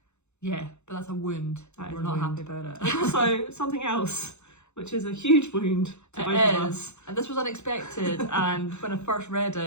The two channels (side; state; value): right; late; 0.82 ms